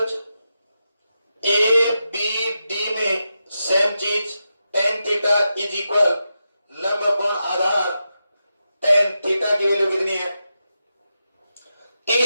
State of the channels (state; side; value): inverted; both; correlation -0.88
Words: ABD में सेम चीज, tan थीटा इज इक्वल लंब अपॉन आधार tan थीटा की वैल्यू कितनी है?